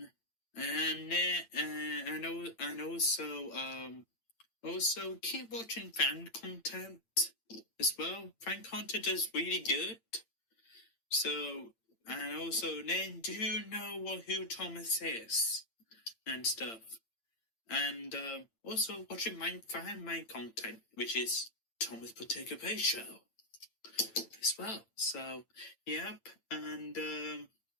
And also keep watching fan content as well. Fan content is really good. So, and also then do know who Thomas is and stuff. And also watching my content, which is Thomas Participation Show as well. So, yep, and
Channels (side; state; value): right; late; 8.9 ms